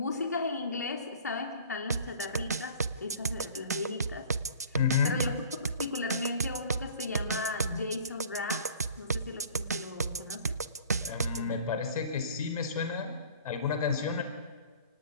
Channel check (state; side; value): inverted; both; correlation -0.47